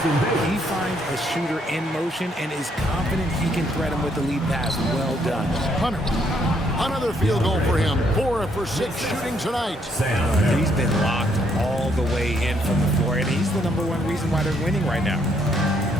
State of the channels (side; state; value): both; normal; correlation 0.71